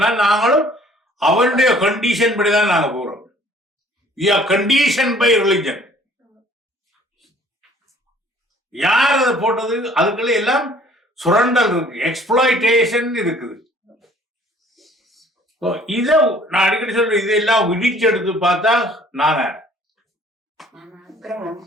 நாங்களும் அவனுடைய கண்டிஷன் படிதான் நாங்க போறோம். Condition by religion. யார் அதை போட்டது? அதுக்குள்ள எல்லாம் சுரண்டல் இருக்கு, எக்ஸ்ப்ளாய்டேஷன் இருக்குது. இத நான் அடிக்கடி சொல்றேன், இதெல்லாம் விடிச்சு எடுத்து பார்த்தா நானே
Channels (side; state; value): both; normal; correlation 0.56